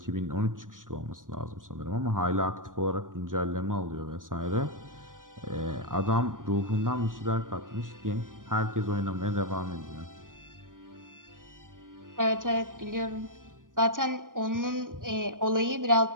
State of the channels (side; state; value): left; late; 0.89 ms